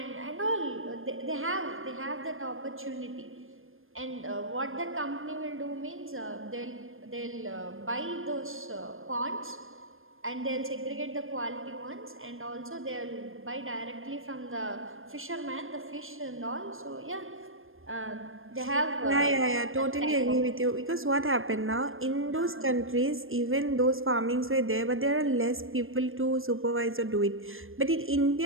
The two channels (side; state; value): left; late; 0.60 ms